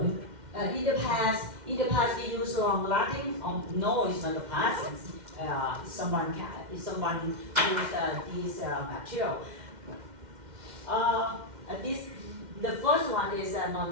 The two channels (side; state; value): left; late; 2.1 ms